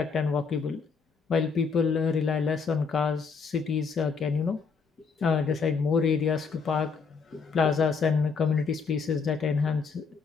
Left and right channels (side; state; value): right; quieter; 5.3 dB